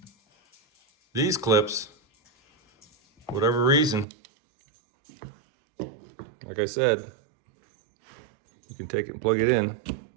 These clips, whatever reason, like I said, you can take it and plug it in.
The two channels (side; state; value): left; drops out; at 4.0 s